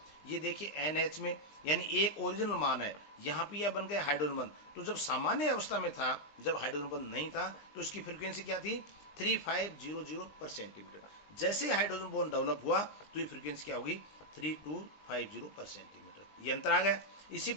ये देखिए NH में, यानी एक ओरिजिनल मान है, यहाँ पे यह बन गया हाइड्रोजन बंध। तो जब सामान्य अवस्था में था, जब हाइड्रोजन बंध नहीं था, तो इसकी फ्रीक्वेंसी क्या थी 3500 पर सेंटीमीटर। जैसे हाइड्रोजन बॉन्ड डेवलप हुआ तो ये फ्रीक्वेंसी क्या होगी 3250 पर सेंटीमीटर, ये अंतर आ गया। इसी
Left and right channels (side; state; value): right; late; 19 ms